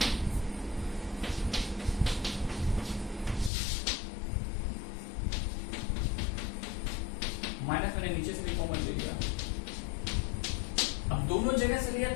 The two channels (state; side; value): drops out; right; at 3.5 s